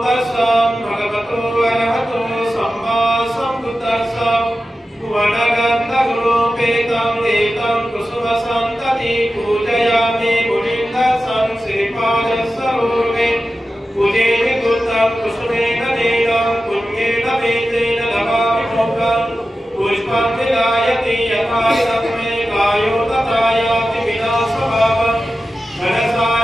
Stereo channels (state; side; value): normal; both; correlation 0.93